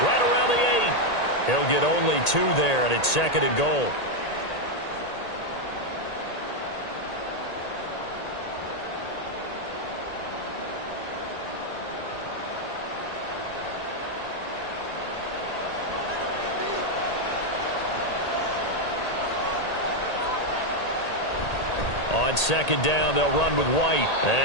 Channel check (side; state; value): right; late; 1.8 ms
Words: right around the 8. He'll get only 2 there, and it's 2nd and goal. On 2nd down, they'll run with White.